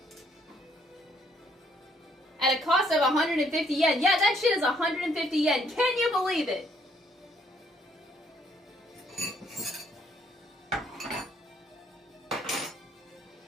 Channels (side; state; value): both; normal; correlation 0.67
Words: At a cost of 150 yen. Yeah, that shit is 150 yen. Can you believe it?